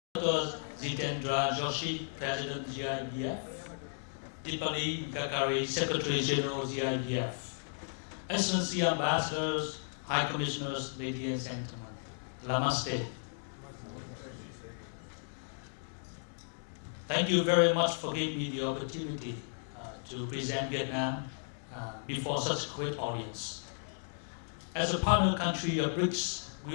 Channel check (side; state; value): right; silent; digital silence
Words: Dr. 𝐍𝐠𝐮𝐲𝐞𝐧 President GIBF, Deepali Kakari, Secretary General GIBF, Excellency Ambassadors, High Commissioners, ladies and gentlemen, Namaste. Thank you very much for giving me the opportunity to present Vietnam before such a great audience. As a partner country of BRICS,